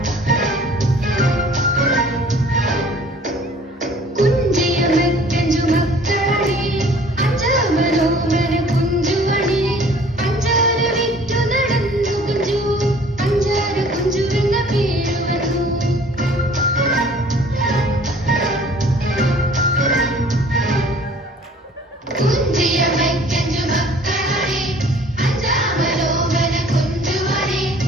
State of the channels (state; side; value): normal; both; correlation 0.52